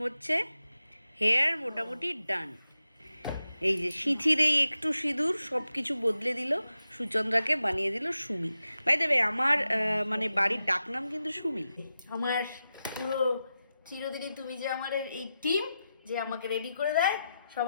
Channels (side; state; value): both; inverted; correlation -0.89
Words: হচ্ছে, হেয়ার মোটামুটি ডান। এই যে সিঁথির এই একটু সিঁদুর সব কিছু বদলে দিল, সুচন্দ্রাকে বানিয়ে দিল সুমি। বাই দ্য ওয়ে আমার মানে বাড়ির ডাকনাম কিন্তু সুমি। আমার পুরো চিরদিনই তুমি যে আমার এই টিম যে আমাকে রেডি করে দেয়,